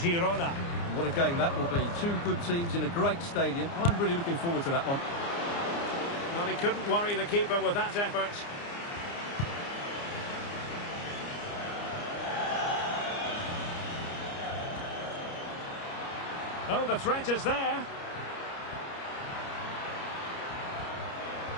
What a game that will be. Two good teams in a great stadium. I'm really looking forward to that one. Well, he couldn't worry the keeper with that effort. Oh, the threat is there.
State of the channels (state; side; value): late; right; 29 ms